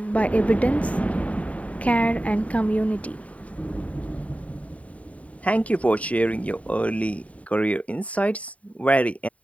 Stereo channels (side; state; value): right; late; 0.067 ms